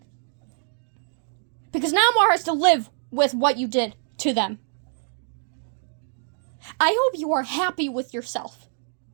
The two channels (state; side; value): silent; left; digital silence